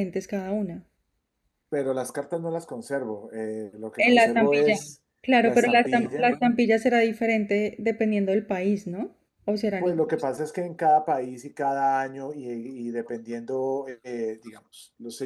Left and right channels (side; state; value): both; identical; correlation 1.00